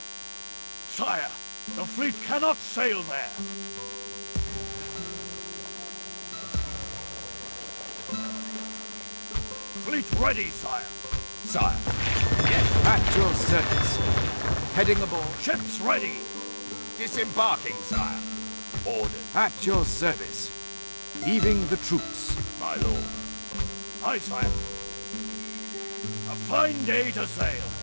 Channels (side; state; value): both; inverted; correlation -1.00